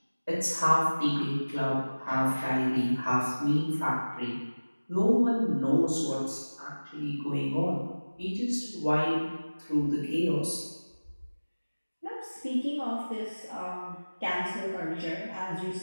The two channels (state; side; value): inverted; both; correlation -1.00